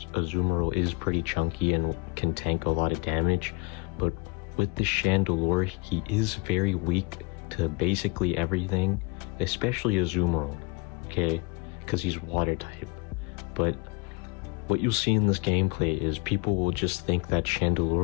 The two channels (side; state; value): right; quieter; 29.8 dB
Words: Azumarill is pretty chunky and can tank a lot of damage. But with the Chandelure, he is very weak to basically everything, especially Azumarill, okay, because he's water type. But what you'll see in this gameplay is people will just think that